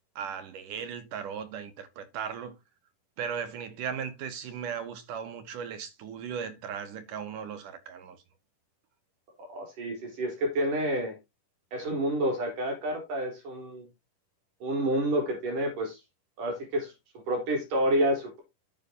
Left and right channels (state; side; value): late; left; 10 ms